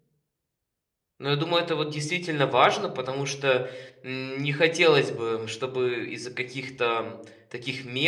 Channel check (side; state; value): both; identical; correlation 1.00